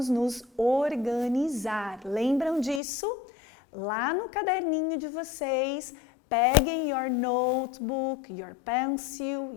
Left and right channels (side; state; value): right; drops out; at 2.8 s